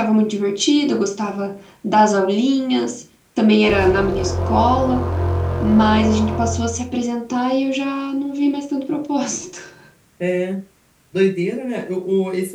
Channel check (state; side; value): identical; both; correlation 1.00